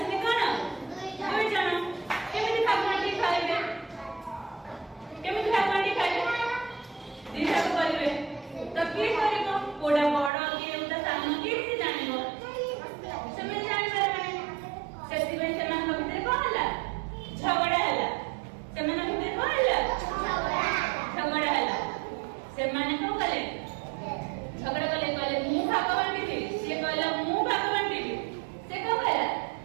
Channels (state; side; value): drops out; left; at 10.3 s